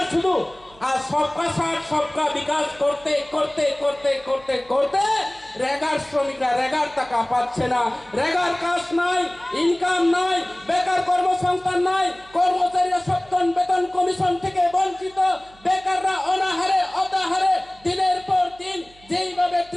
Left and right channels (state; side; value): noise; right; hum, 26 dB below the sound